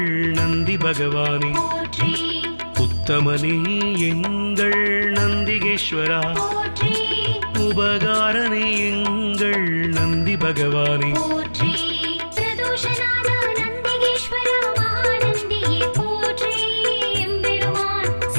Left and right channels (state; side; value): inverted; both; correlation -1.00